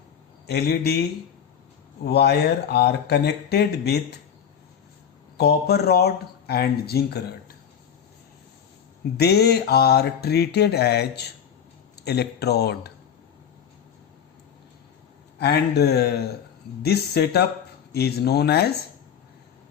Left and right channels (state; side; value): quieter; right; 8.2 dB